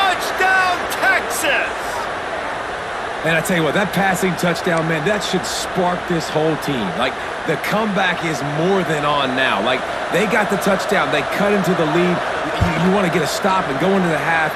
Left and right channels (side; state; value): both; identical; correlation 1.00